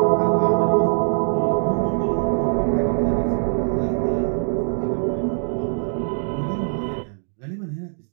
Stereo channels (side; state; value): left; silent; digital silence